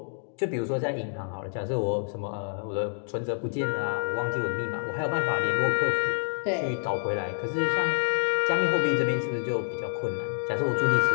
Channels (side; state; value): right; silent; digital silence